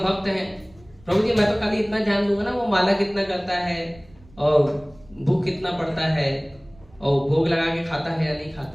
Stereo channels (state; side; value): noise; right; rumble, 26 dB below the sound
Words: हैं, प्रभु जी मैं तो खाली इतना ध्यान दूंगा ना, वो माला कितना करता है और भूख कितना पड़ता है और भोग लगा के खाता है या नहीं